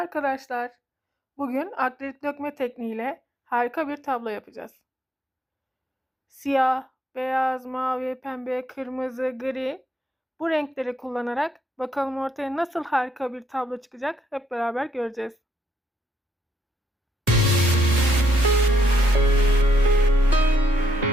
Bugün akrilik dökme tekniğiyle harika bir tablo yapacağız. Siyah, beyaz, mavi, pembe, kırmızı, gri bu renkleri kullanarak bakalım ortaya nasıl harika bir tablo çıkacak hep beraber göreceğiz.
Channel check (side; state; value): both; normal; correlation 0.74